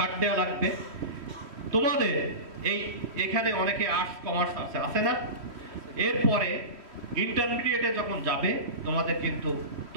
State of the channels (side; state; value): left; late; 3.1 ms